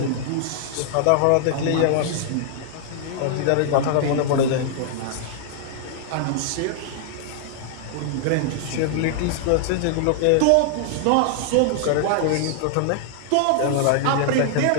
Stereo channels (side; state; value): both; different; correlation 0.00